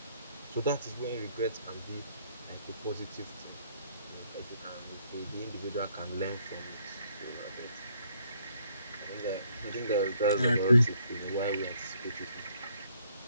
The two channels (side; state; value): both; inverted; correlation -0.68